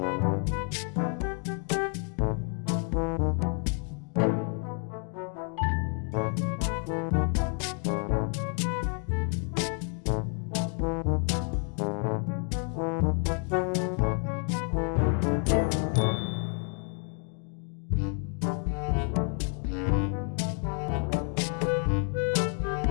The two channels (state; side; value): quieter; right; 38.8 dB